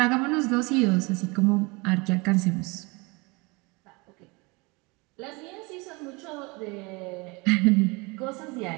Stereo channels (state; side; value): quieter; left; 27.0 dB